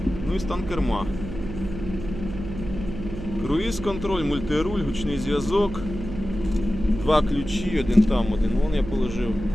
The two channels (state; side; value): noise; right; hum, 9 dB below the sound